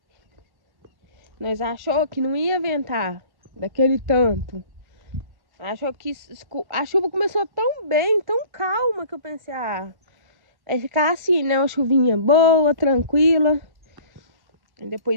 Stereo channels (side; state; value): left; late; 1.1 ms